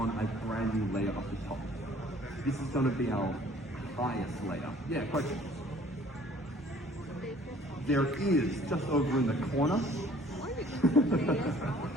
a brand new layer up the top. This is going to be our highest layer. Yeah, questions? There is, just over in the corner.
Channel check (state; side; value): normal; both; correlation 0.55